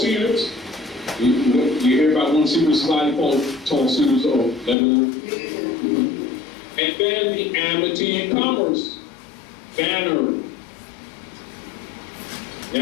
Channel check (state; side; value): drops out; right; at 4.8 s